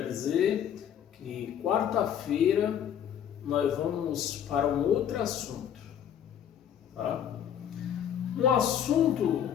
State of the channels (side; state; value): right; quieter; 9.3 dB